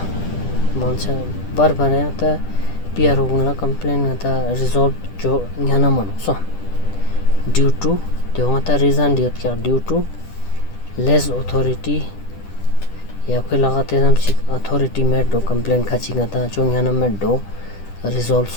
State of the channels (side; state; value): right; late; 10 ms